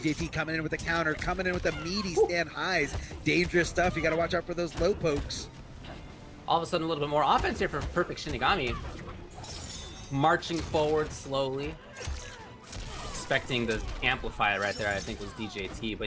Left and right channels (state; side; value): identical; both; correlation 1.00